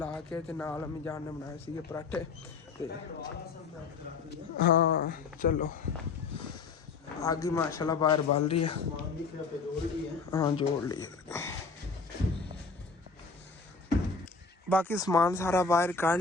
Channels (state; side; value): quieter; right; 4.7 dB